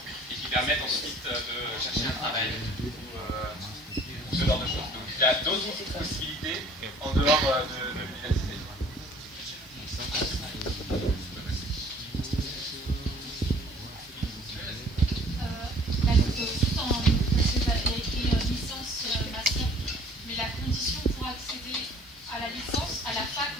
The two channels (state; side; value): normal; both; correlation 0.53